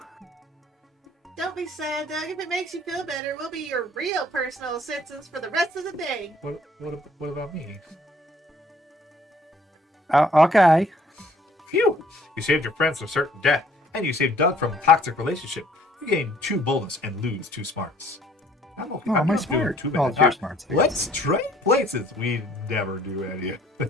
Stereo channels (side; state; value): both; normal; correlation 0.59